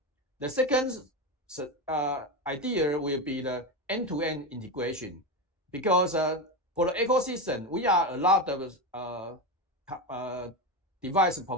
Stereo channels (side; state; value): both; normal; correlation 0.16